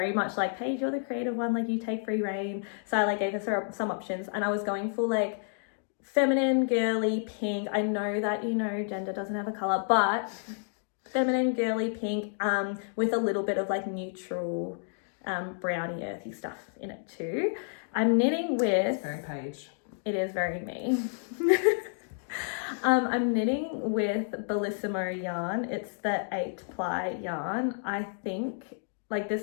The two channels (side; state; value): right; silent; digital silence